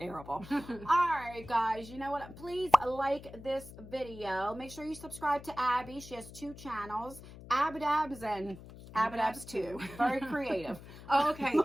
All right, guys, you know what? Please like this video. Make sure you subscribe to Abby. She has 2 channels, Abbadabbs and Abbadabbs 2. Very creative. Oh, okay.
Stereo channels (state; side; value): noise; left; hum, 16 dB below the sound